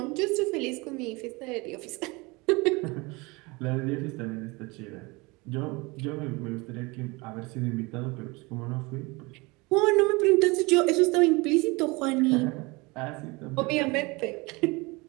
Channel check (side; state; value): left; quieter; 25.3 dB